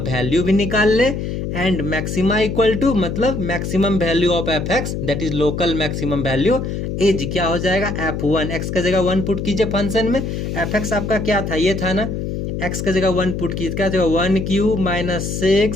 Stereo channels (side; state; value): left; noise; hum, 4 dB below the sound